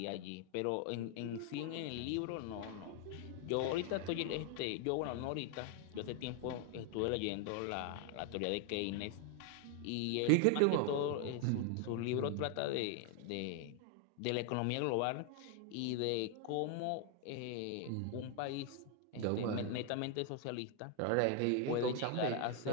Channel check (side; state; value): both; different; correlation 0.00